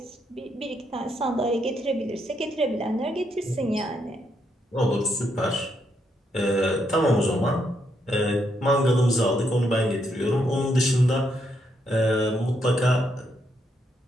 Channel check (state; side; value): normal; both; correlation 0.77